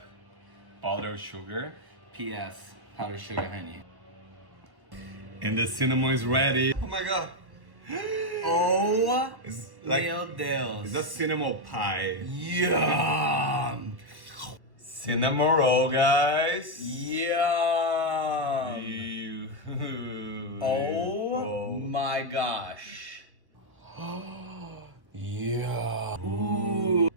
powdered sugar. P.S. Powdered sugar, honey. And the cinnamon is ready. Oh my god. Oh, It's like meu Deus. it's a cinnamon pie. Yum. Cinnamon roll, guys. Yum. Ew. Oh my gosh. Yeah. Ooh.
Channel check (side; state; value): left; late; 1.2 ms